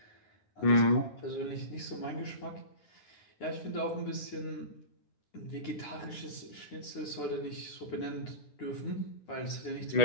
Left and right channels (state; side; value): late; right; 9.7 ms